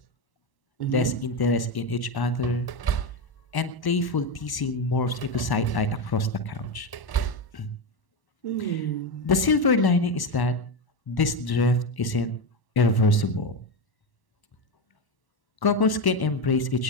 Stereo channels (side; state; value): right; late; 1.1 ms